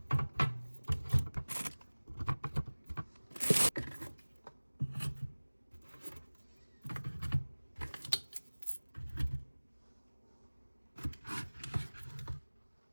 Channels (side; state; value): both; inverted; correlation -1.00